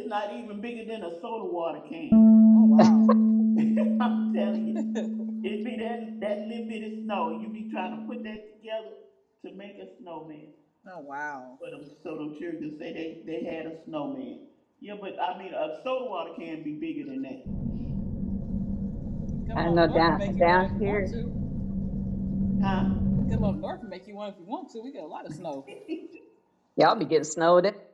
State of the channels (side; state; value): both; identical; correlation 1.00